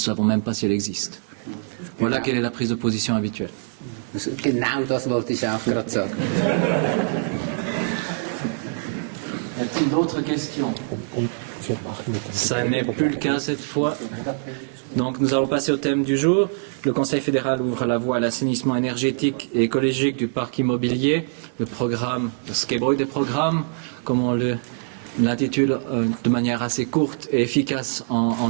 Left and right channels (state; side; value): silent; left; digital silence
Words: même pas si elle existe. Voilà quelle est la prise de position habituelle. Genau das wollte ich auch gerade sagen. Y a-t-il d'autres questions? Ça n'est plus le cas cette fois. Donc nous allons passer au thème du jour. Le Conseil fédéral ouvre la voie à l'assainissement énergétique et écologique du parc immobilier. Le programme, le Skebroy des programmes, comme on l'intitule de manière assez courte et efficace